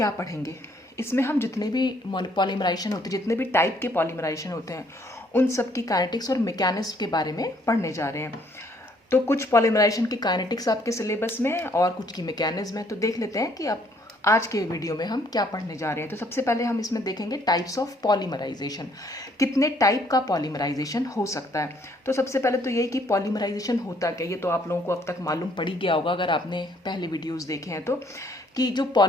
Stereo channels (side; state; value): both; normal; correlation 0.65